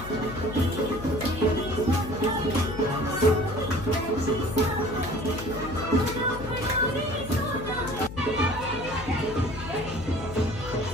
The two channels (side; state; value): left; noise; hum, 11 dB below the sound